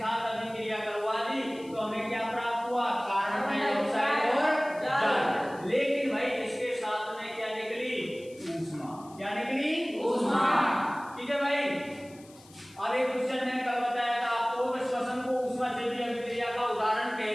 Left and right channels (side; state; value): left; noise; hiss, 24 dB below the sound